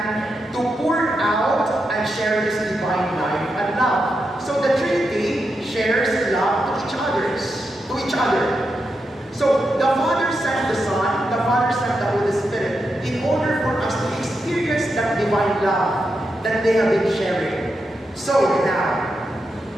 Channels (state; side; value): normal; both; correlation 0.86